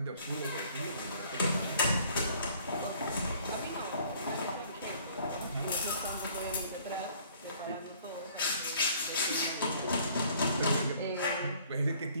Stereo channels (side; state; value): both; inverted; correlation -0.58